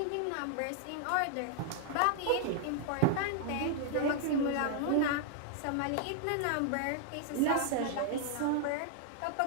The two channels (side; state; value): both; different; correlation -0.01